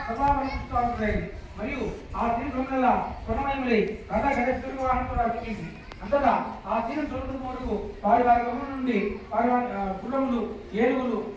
సభావరిస్తూ ఉంటాయి. మరియు ఆ తీరు దొంగల స్వర్ణమయములై రథ గజ వాహనం కూడా వచ్చింది. అంతటా ఆ తీరం చూడటం వరకు వారి వారి గమనం నుండి వారి గుర్రములు, ఏనుగులు,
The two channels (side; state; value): both; identical; correlation 1.00